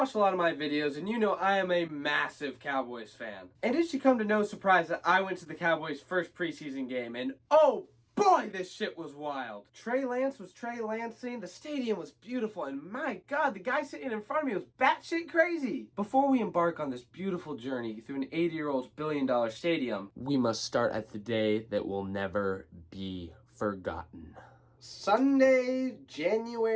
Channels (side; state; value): both; identical; correlation 1.00